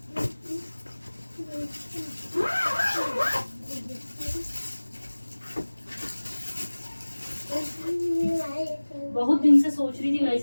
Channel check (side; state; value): both; inverted; correlation -1.00